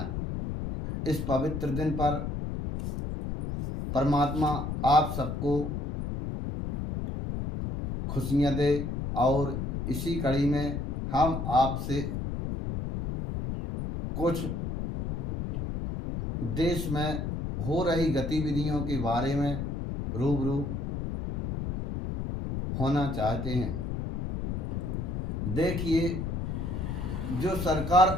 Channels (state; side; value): noise; left; rumble, 3 dB below the sound